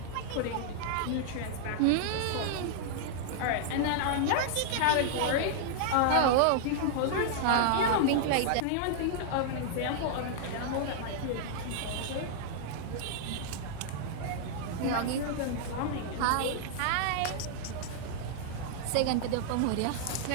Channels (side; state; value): both; different; correlation -0.01